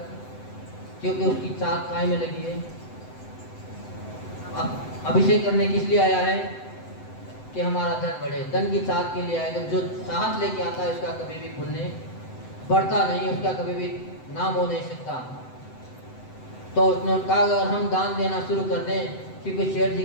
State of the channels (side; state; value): right; late; 7.9 ms